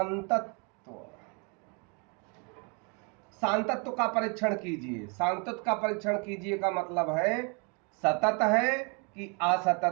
सांतत्व का परीक्षण कीजिए, सांतत्व का परीक्षण कीजिए का मतलब है सतत है कि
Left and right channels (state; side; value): quieter; left; 34.2 dB